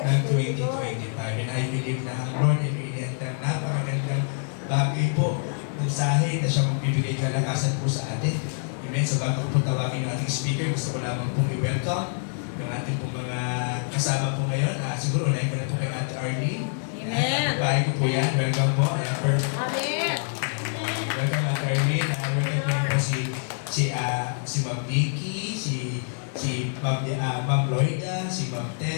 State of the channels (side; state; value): right; silent; digital silence